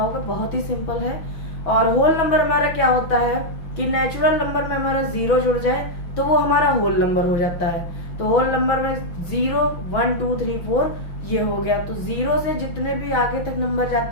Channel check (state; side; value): late; right; 6.1 ms